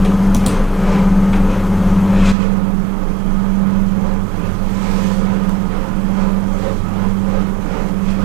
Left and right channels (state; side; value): drops out; left; at 2.4 s